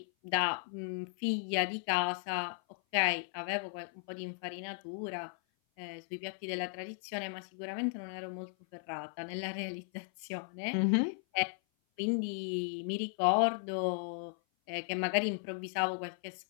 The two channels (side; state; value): right; silent; 54 dB below the other